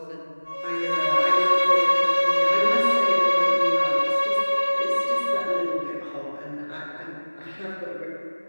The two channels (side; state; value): both; inverted; correlation -1.00